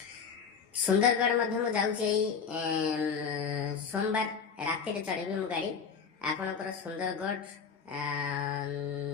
ସୁନ୍ଦରଗଡ଼ ମଧ୍ୟ ମୁଁ ଯାଉଛି ଏଇ ସୋମବାର ରାତିରେ ଚଢ଼ିବି ମୁଁ ଗାଡ଼ି। ଆପଣଙ୍କର ସୁନ୍ଦରଗଡ଼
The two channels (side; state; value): right; quieter; 6.2 dB